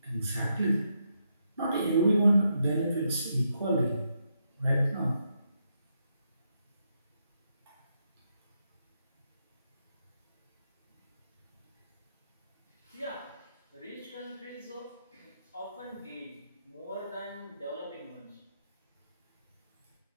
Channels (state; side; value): inverted; both; correlation -0.80